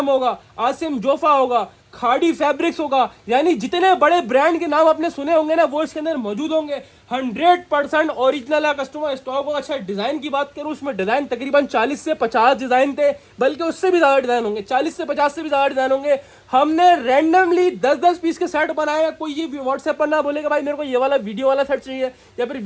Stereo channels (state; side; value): identical; both; correlation 1.00